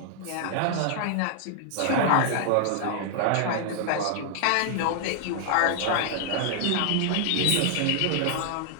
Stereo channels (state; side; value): different; both; correlation 0.00